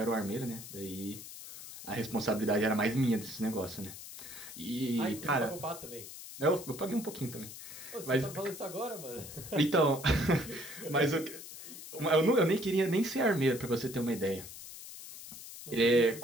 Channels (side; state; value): left; noise; hiss, 13 dB below the sound